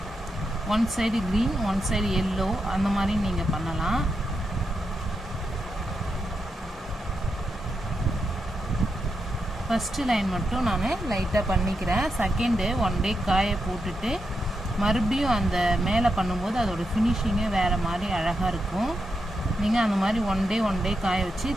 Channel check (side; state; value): both; normal; correlation 0.85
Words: One side green one side yellow அந்த மாதிரி நீங்கள் பண்ணலாம். ஃபஸ்ட்டு லைன் மட்டும் நான் லைட்டாக பண்ணிக்கிறேன். செகண்டு 1 டே காய போட்டுட்டு மறுபடியும் அந்த மேலே பண்ணும்போது அதோடய ஃபினிஷிங்கே வேறு மாதிரி அழகாக இருக்கும். நீங்கள் அந்த மாதிரி 1 டே காய வச்சு